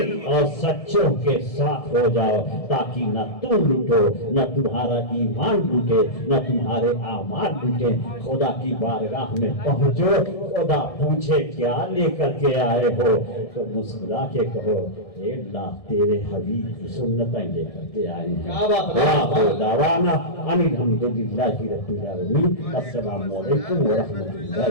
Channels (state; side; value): late; right; 1.7 ms